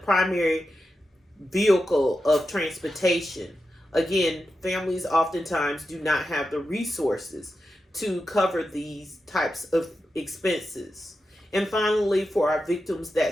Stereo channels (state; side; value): normal; both; correlation 0.90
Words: primary vehicle of transportation, again, families oftentimes do not have the resources to cover these types of expenses. And finally, for our victims